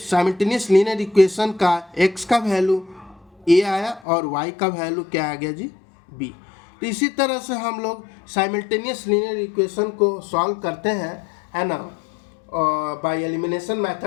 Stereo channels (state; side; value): drops out; right; at 4.0 s